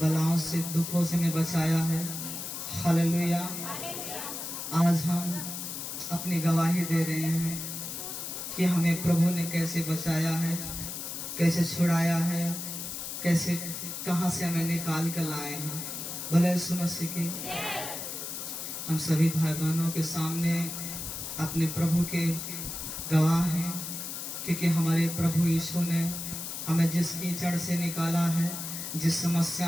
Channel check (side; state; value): left; noise; hiss, 6 dB below the sound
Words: बलाओं से दुखों से हमें बचाया है। हालेलुया। आज हम अपनी गवाही दे रहे हैं कि हमें प्रभु ने कैसे बचाया है, कैसे छुड़ाया है, कैसे कहां से हमें निकाल कर लाए हैं। भले यीशु मसीह की हम सभी भाई बहनों के सामने अपने प्रभु के गवाह हैं, क्योंकि हमारे प्रभु यीशु ने हमें जिस कीचड़ से निकाला है, जिस